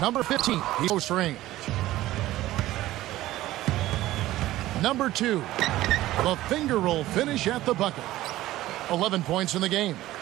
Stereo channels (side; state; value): left; quieter; 15.7 dB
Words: Number 15, he's close range. Number 2, the finger roll finish at the bucket. 11 points in the game.